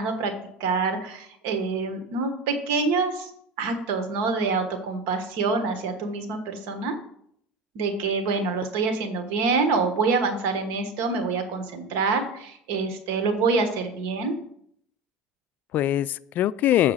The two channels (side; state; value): both; normal; correlation 0.24